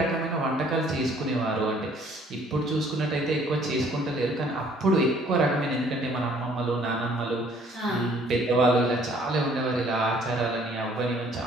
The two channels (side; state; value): both; normal; correlation 0.59